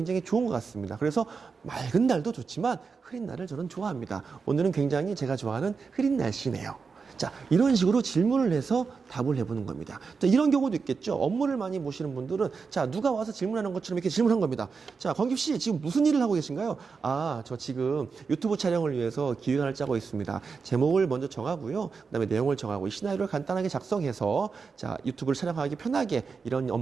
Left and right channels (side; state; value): left; quieter; 5.1 dB